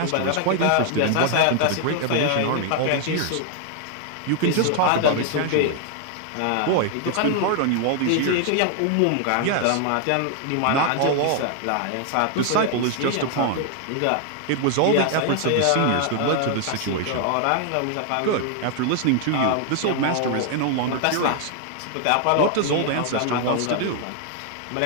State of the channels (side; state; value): both; different; correlation 0.00